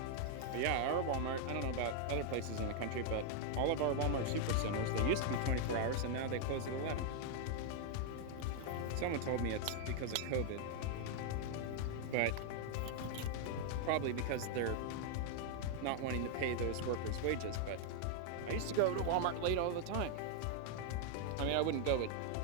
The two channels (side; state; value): both; different; correlation 0.00